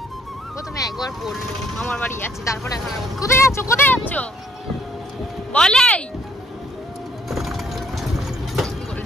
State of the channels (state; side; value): normal; both; correlation 0.66